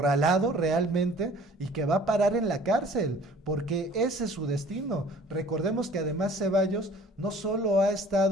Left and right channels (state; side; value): normal; both; correlation 0.51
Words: realmente y que va a parar en la cárcel, porque ese es su destino. Recordemos que además Ceballos no solo ha